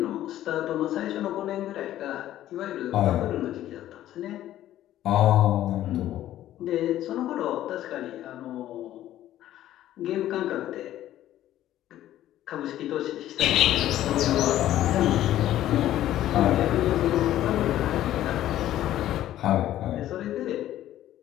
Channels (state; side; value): quieter; right; 13.1 dB